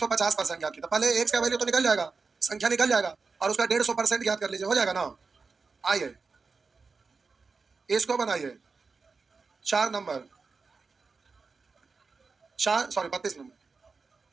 ज्ञात कीजिए। तो पहले एक्स का वैल्यू तो निकल जाएगा, संख्या निकल जाएगा, और उसका 150% ज्ञात कर लीजिए, हो जाएगा ना। आइए इसको बनाइए, 4 नंबर, 4 सॉरी 32 नंबर,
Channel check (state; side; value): quieter; left; 4.5 dB